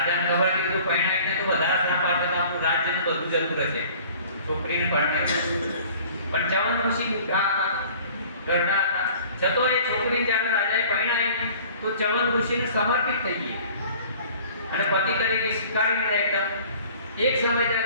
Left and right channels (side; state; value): both; inverted; correlation -0.49